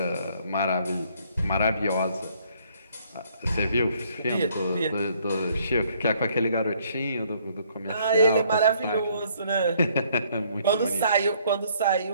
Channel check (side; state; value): both; inverted; correlation -0.64